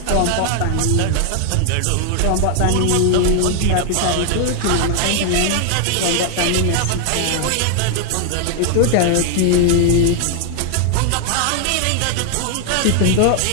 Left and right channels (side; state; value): both; different; correlation 0.00